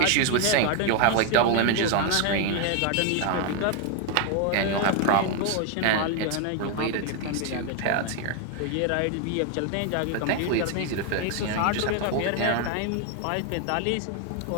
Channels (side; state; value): both; different; correlation 0.01